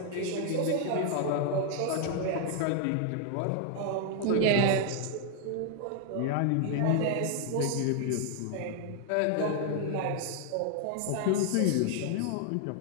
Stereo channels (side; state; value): both; different; correlation 0.00